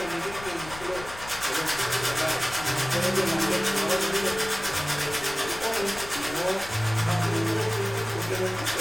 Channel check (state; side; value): noise; left; rumble, 15 dB below the sound